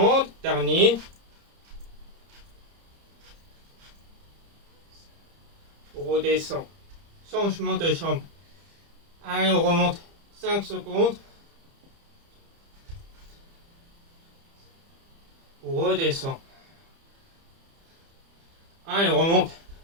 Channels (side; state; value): left; late; 30 ms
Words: dernier. On redescend. changement de chambre. Allez, on remonte 5 secondes. On redescend. Allez, on remonte.